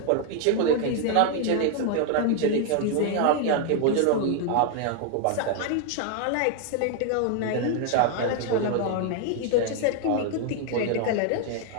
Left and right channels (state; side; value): different; both; correlation 0.00